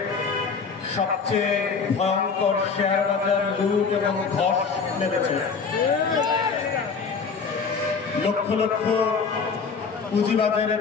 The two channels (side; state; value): right; quieter; 5.3 dB